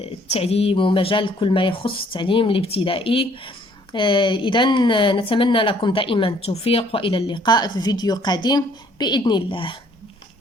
التعليم ومجال كل ما يخص التعليم الابتدائي. إذا نتمنى لكم دائما التوفيق وإلى اللقاء في فيديو قادم بإذن الله.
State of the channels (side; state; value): both; normal; correlation 0.62